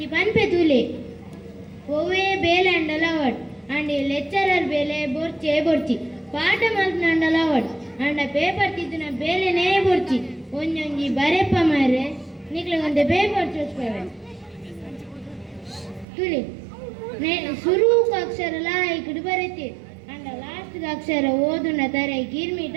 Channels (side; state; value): left; drops out; at 16.1 s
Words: ಪನ್ಪೆ ತುಲೆ ಒವ್ವೇ ಬೇಲೆ ಅಂಡಲ ಅವಡ್ ಅಂಡ್ ಲೆಕ್ಚರರ್ ಬೇಲೆ ಬೊರ್ಚೆ ಬೊರ್ಚಿ ಪಾಠ ಮಲ್ಪನಂಡಲ ಅವಡ್ ಅಂಡ ಪೇಪರ್ ತಿದ್ದಿನ ಬೇಲೆನೇ ಬೊರ್ಚಿ ಒಂಜೊಂಜಿ ಬರೆಪ್ಪ ಮಾರೆ ನಿಕ್ಲೆಗೊಂದೆ ಪೇಪರ್ ಚೋಸ್ಪವೆ ತುಲಿ ಶುರುಕ ಅಕ್ಷರ ಲಾಯ್ಕುಡು ಬರೆತಿ ಅಂಡ ಲಾಸ್ಟ್ ಅಕ್ಷರ ಓದುನ ತರ ಗಿರ್ಮಿಟ